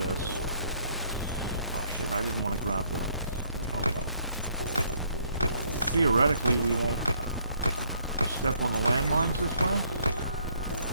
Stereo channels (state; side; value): inverted; both; correlation -0.66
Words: Oh shit, I didn't want to grab the... Oh well. Theoretically, we won't step on the landmines this way.